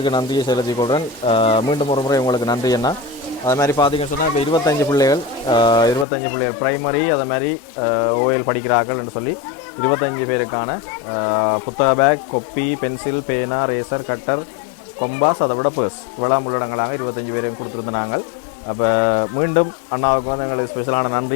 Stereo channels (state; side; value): drops out; right; at 6.1 s